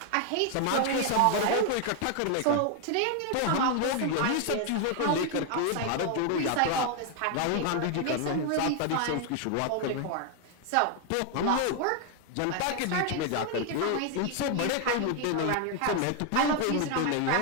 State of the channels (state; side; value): different; both; correlation 0.00